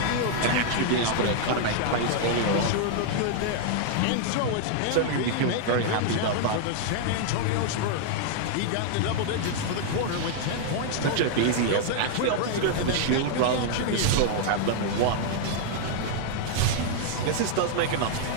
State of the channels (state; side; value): different; both; correlation -0.01